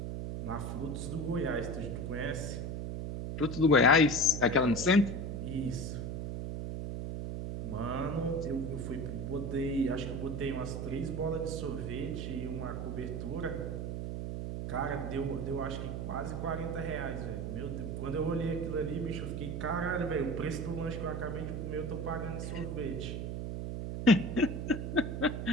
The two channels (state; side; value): noise; right; hum, 4 dB below the sound